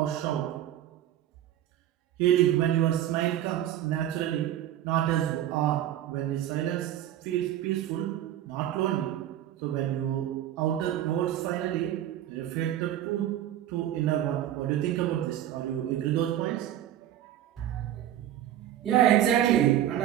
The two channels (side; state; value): left; quieter; 12.0 dB